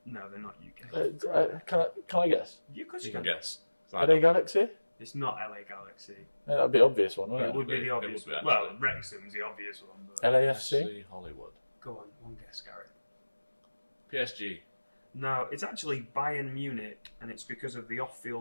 No, they're not UK. Can I guess? You can guess. LA Galaxy? It's not LA Galaxy. Yeah, that'd be the obvious one, wouldn't it? It would be the obvious one. Well, Wrexham's the obvious one. But LAFC? FC Hollywood. Go on, one guess, Gareth. PSG. No, it's actually Bayern Munich, and it's because of the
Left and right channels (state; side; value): inverted; both; correlation -1.00